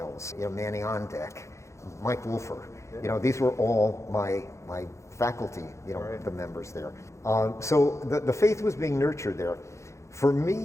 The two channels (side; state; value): right; late; 0.14 ms